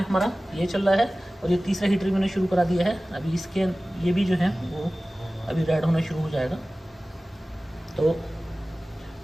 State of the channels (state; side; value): normal; both; correlation 0.97